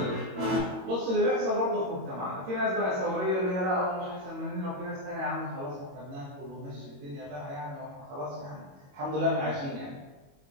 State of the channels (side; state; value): left; late; 22 ms